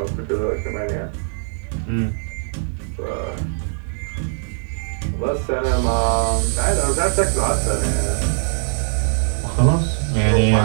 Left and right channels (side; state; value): left; silent; digital silence